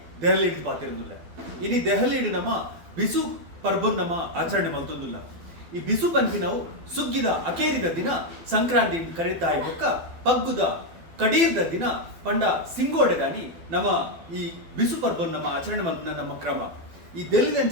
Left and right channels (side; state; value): left; late; 12 ms